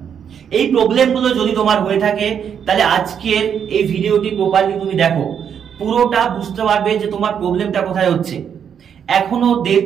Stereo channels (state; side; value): quieter; left; 8.0 dB